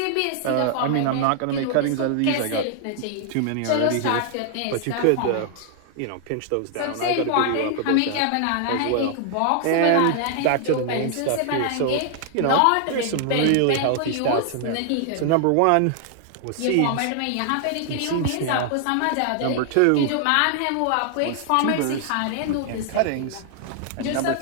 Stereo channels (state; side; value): different; both; correlation 0.00